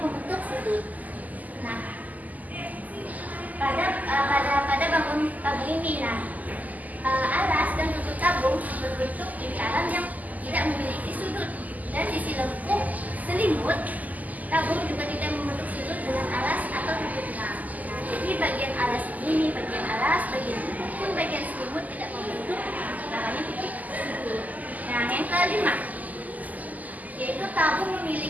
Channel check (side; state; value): left; late; 0.079 ms